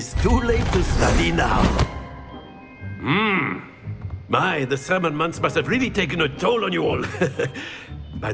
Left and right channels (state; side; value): identical; both; correlation 1.00